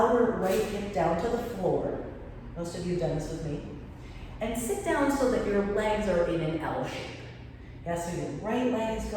right hip down to the floor. Most of you have done this with me. And sit down so that your legs are in an L shape. Yeah, so your right leg is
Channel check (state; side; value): identical; both; correlation 1.00